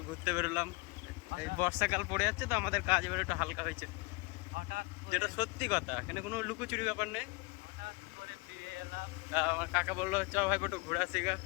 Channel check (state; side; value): quieter; right; 26.9 dB